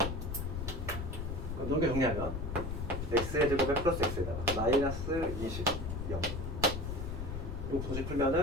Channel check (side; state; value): left; noise; rumble, 4 dB below the sound